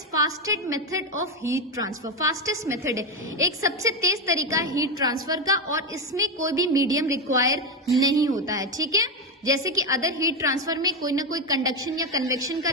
fastest method of heat transfer. Fastest method है, एक सबसे तेज तरीका है हीट ट्रांसफर का, और इसमें कोई भी मीडियम रिक्वायर नहीं होता है. ठीक है, जैसे कि अदर हीट ट्रांसफर में कोई ना कोई कंडक्शन या कन्वेक्शन का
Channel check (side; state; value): both; normal; correlation 0.11